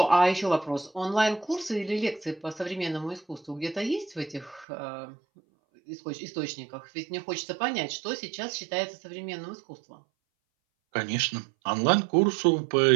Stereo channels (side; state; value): left; drops out; at 4.7 s